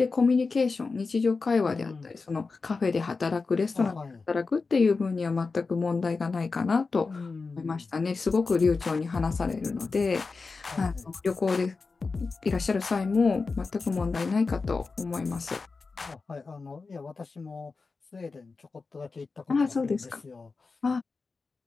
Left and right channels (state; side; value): quieter; right; 4.3 dB